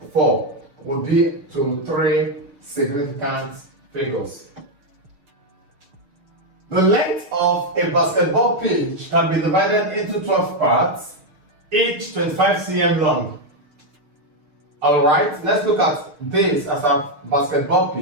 would be to three significant figures. The length of a basketball pitch can be divided into 12 parts, each 25 cm long. Alright, let's look at this as a basketball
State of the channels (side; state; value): left; late; 6.7 ms